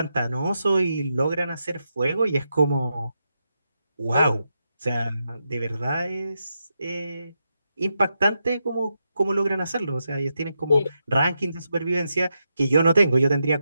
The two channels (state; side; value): inverted; both; correlation -0.85